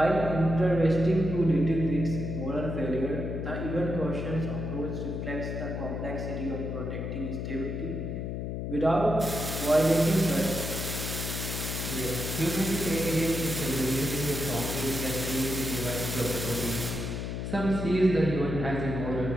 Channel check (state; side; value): noise; left; hum, 4 dB below the sound